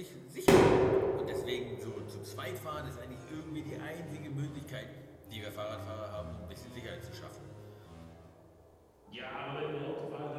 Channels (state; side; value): identical; both; correlation 1.00